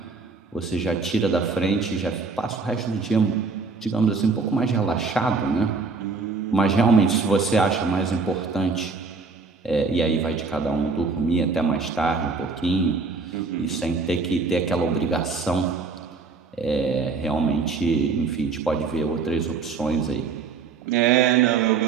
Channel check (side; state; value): left; quieter; 4.5 dB